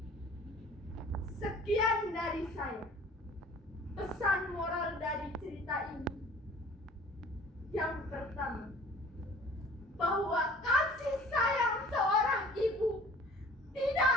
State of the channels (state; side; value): normal; both; correlation 0.49